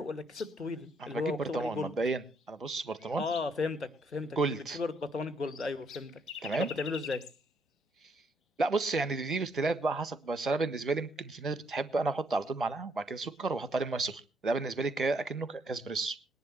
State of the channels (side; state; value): both; normal; correlation 0.71